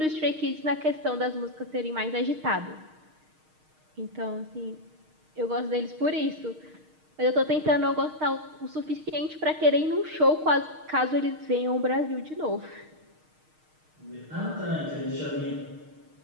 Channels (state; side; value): late; left; 6.5 ms